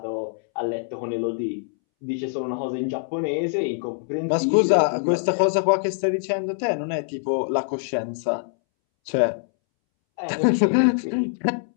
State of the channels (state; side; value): silent; right; 63 dB below the other